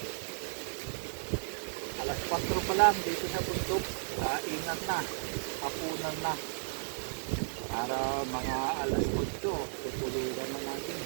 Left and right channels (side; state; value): left; silent; 55 dB below the other